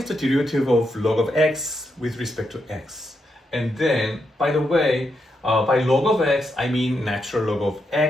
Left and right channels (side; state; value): both; normal; correlation 0.82